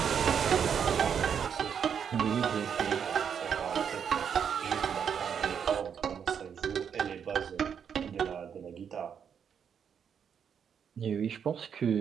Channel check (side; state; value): left; quieter; 7.6 dB